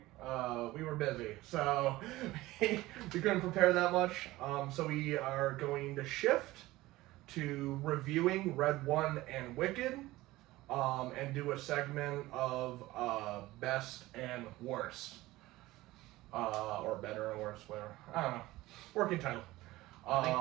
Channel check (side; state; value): left; quieter; 18.1 dB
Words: were busy, so we couldn't prepare that much. So we are going to shift to reviewing Red One and Wicked, and do a segment of best and worst, or better and worst, whatever. I don't know. Working title. I